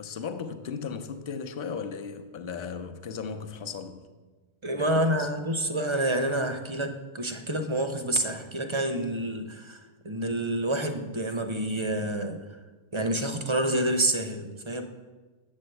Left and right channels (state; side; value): late; left; 1.3 ms